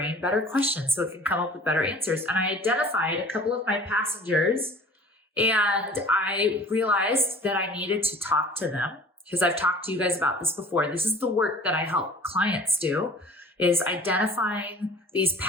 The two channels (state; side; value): normal; both; correlation 0.46